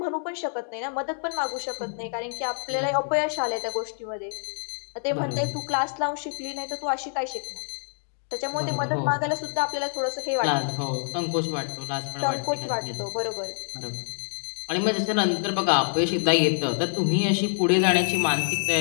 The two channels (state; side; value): silent; right; digital silence